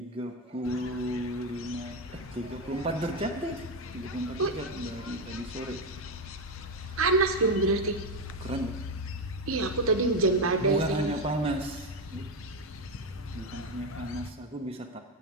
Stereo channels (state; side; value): normal; both; correlation 0.10